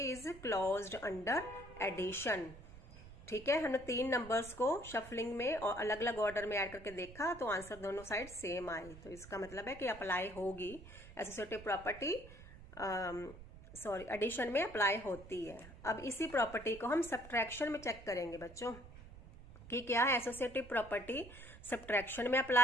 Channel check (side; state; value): right; noise; rumble, 17 dB below the sound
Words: is closed under addition, ठीक है। हमने 3 नंबर्स को शफलिंग में और अलग अलग ऑर्डर में ऐड करके देखा तो आंसर दोनों साइड सेम आई, तो इसका मतलब है कि अप्लाई होगी एसोसिएटिव प्रॉपर्टी, सॉरी एडिशन में अप्लाई होती है। अब इसी प्रॉपर्टी को हम सब्ट्रैक्शन में चेक करेंगे बच्चों कि क्या एसोसिएटिव प्रॉपर्टी सब्ट्रैक्शन में